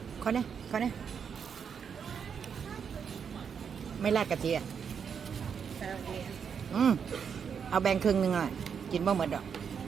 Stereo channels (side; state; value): left; quieter; 7.0 dB